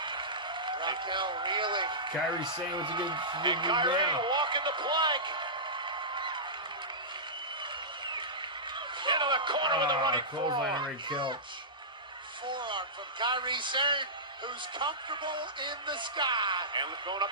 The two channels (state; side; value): normal; both; correlation -0.17